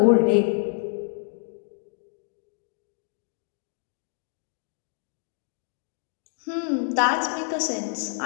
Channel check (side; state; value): right; silent; digital silence